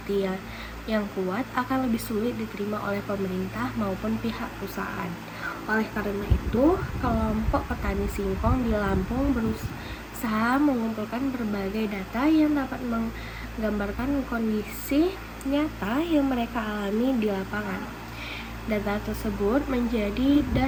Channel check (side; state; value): both; identical; correlation 1.00